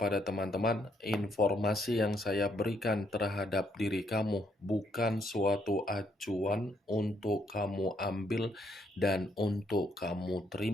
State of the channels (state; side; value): normal; both; correlation 0.72